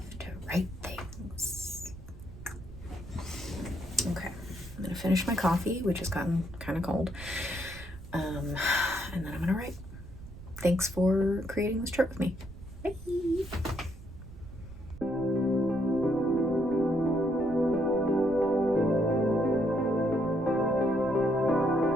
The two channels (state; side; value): noise; right; rumble, 15 dB below the sound